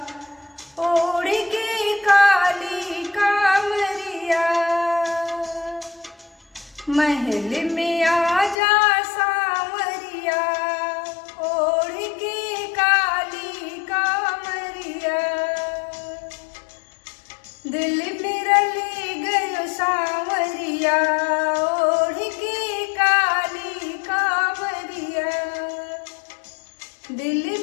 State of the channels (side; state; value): right; drops out; at 8.6 s